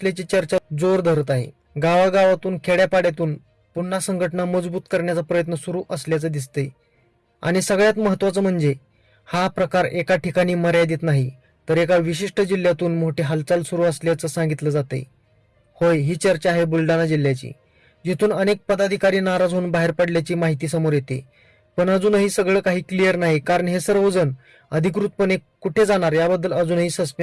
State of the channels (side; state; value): both; identical; correlation 1.00